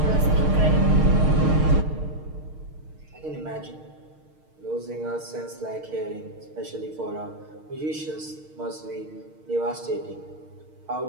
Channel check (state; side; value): late; left; 6.5 ms